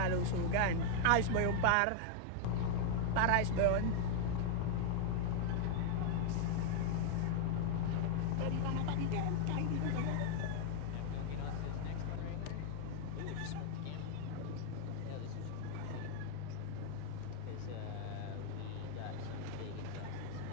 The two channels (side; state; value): both; different; correlation 0.00